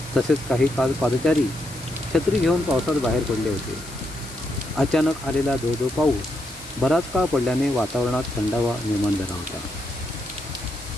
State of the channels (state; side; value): noise; left; hiss, 16 dB below the sound